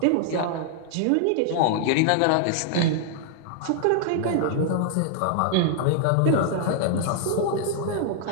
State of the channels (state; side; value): different; both; correlation -0.01